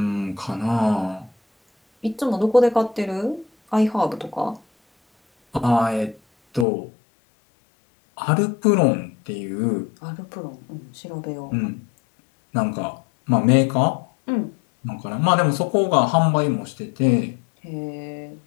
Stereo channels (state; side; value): drops out; right; at 6.7 s